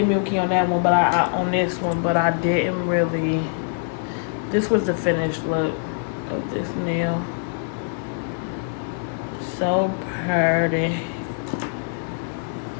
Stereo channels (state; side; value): silent; right; digital silence